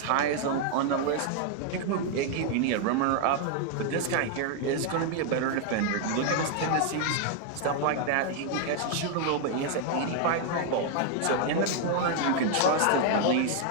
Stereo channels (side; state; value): both; different; correlation 0.00